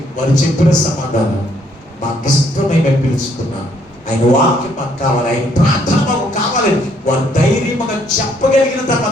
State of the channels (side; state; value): both; normal; correlation 0.68